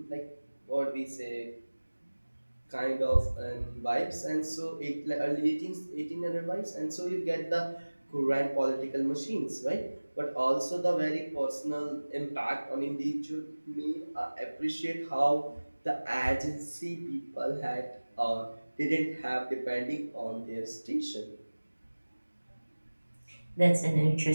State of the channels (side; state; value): both; inverted; correlation -1.00